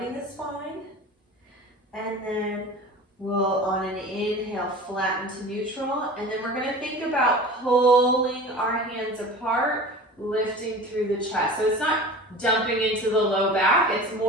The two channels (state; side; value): normal; both; correlation 0.37